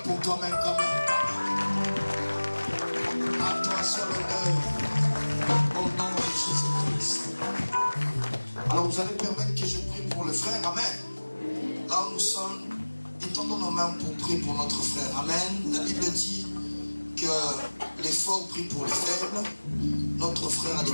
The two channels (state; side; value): inverted; both; correlation -1.00